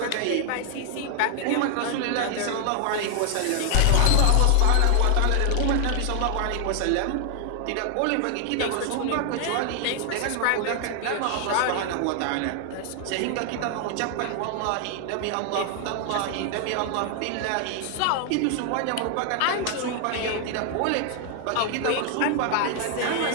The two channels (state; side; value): different; both; correlation 0.00